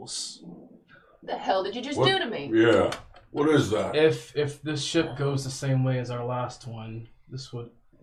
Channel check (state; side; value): identical; both; correlation 1.00